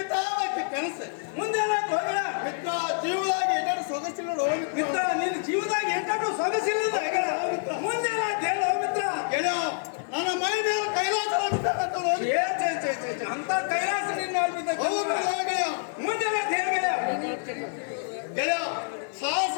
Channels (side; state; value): right; silent; 60 dB below the other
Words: ಕನಸು ಮುಂದೆ ಹೋಗಲ್ಲ ಮಿತ್ರ ಜೀವದಾಗ ಏನಾದ್ರು ಸೊಗಸಿಲ್ಲ ಮಿತ್ರ ನಿನ್ನ ಜೀವದಾಗ ಏನಾದ್ರು ಸೊಗಸಿಲ್ಲದ ಮುಂದೆ ಹೇಳೋ ಮಿತ್ರ ಗೆಳೆಯ ನನ್ನ ಮೈ ಮೇಲೆ ಕೈಲಾಸ ಅಂತ ಕೈಲಾಸ ನಿನ್ನ ಗೆಳೆಯ ಮುಂದೆ ಗೆಳೆಯ ಸಾಹಸ